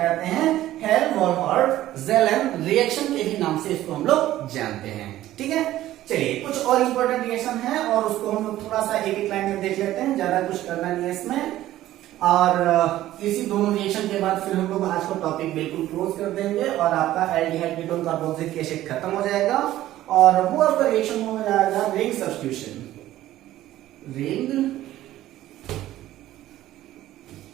हैं, हेल-वॉलहार्ड-जेलन रिएक्शन के ही नाम से इसको हम लोग जानते हैं। ठीक है, चलिए कुछ और इंपॉर्टेंट रिएक्शन है और उसको हम लोग थोड़ा सा एक एक लाइन में देख लेते हैं, ज्यादा कुछ करना नहीं है इसमें, और इसी दोनों रिएक्शन के बाद फिर हम लोग आज का टॉपिक बिल्कुल क्लोज कर देंगे और आपका एल्डिहाइड कीटोन कार्बोक्सिलिक एसिड खत्म हो जाएगा, और वो आपका रिएक्शन हो जाएगा रिंग सब्स्टिट्यूशन।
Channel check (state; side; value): quieter; left; 14.3 dB